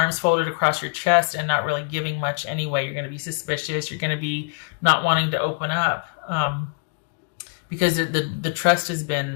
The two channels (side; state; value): right; quieter; 38.6 dB